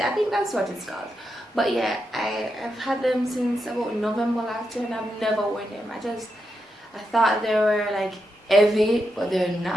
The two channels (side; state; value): both; normal; correlation 0.85